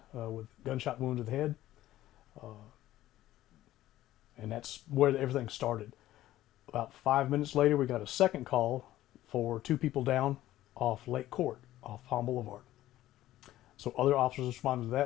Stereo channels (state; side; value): quieter; right; 14.5 dB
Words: with gunshot wound to the head, and that's where everything started. About 5 minutes later, we got a second call for two people down off Lake Court, off Palm Boulevard. So other officers responded to